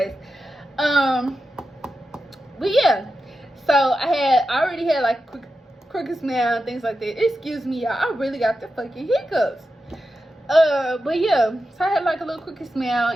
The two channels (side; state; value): both; normal; correlation 0.90